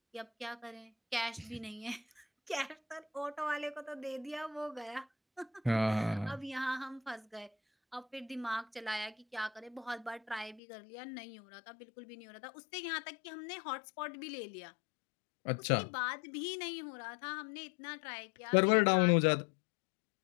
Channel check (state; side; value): drops out; right; at 10.6 s